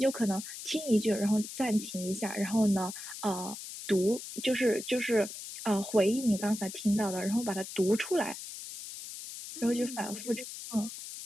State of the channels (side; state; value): left; noise; hiss, 10 dB below the sound